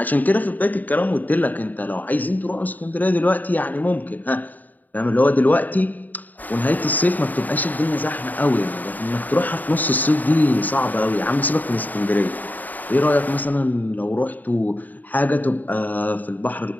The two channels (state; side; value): late; right; 0.083 ms